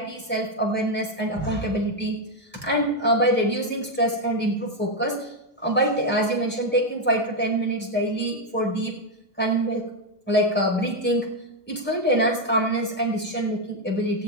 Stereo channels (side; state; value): both; normal; correlation 0.03